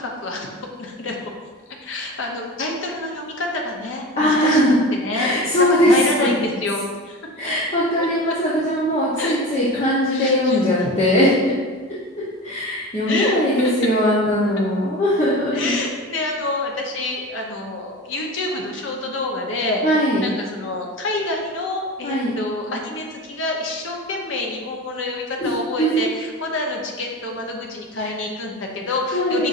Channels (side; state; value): both; normal; correlation 0.30